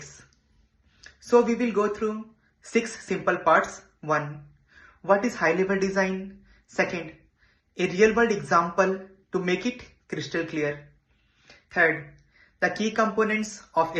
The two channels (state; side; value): identical; both; correlation 1.00